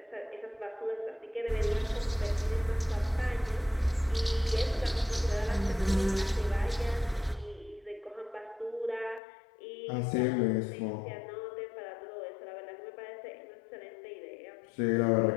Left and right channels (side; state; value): right; drops out; at 9.2 s